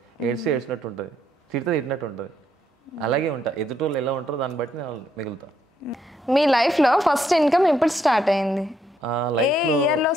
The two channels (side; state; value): both; normal; correlation 0.74